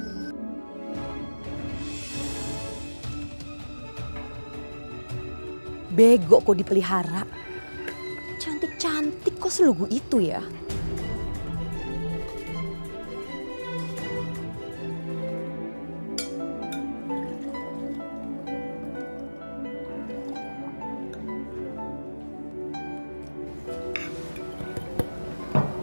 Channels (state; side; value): inverted; both; correlation -1.00